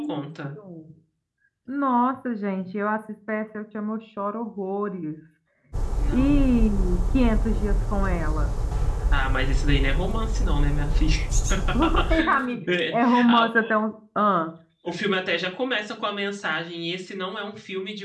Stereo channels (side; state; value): both; identical; correlation 1.00